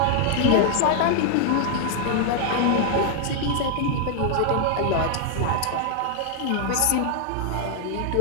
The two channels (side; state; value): both; different; correlation 0.00